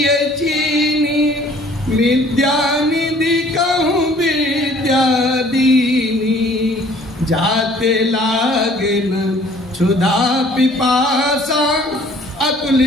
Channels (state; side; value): normal; both; correlation 0.55